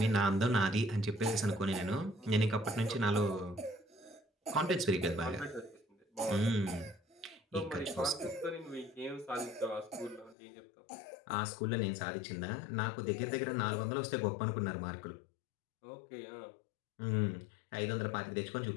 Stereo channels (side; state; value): right; drops out; at 10.4 s